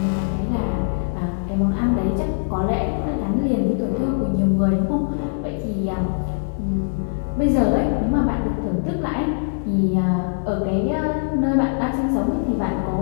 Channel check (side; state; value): right; silent; digital silence